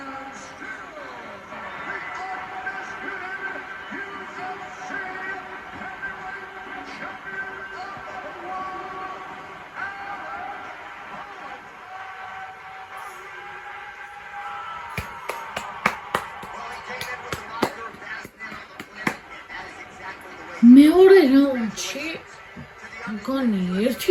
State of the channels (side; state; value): both; identical; correlation 1.00